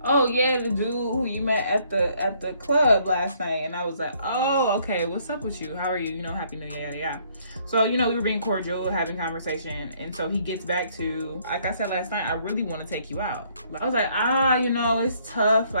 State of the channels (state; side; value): inverted; both; correlation -0.66